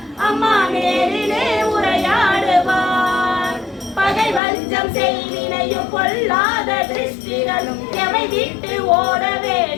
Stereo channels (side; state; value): right; drops out; at 4.4 s